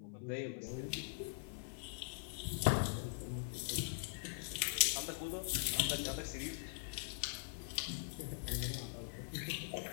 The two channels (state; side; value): silent; right; digital silence